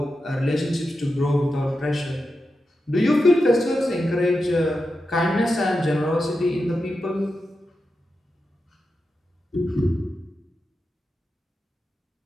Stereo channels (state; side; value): normal; both; correlation 0.89